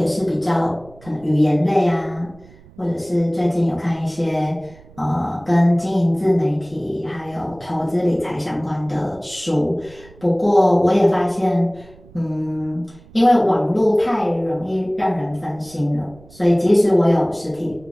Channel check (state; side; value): noise; right; rumble, 24 dB below the sound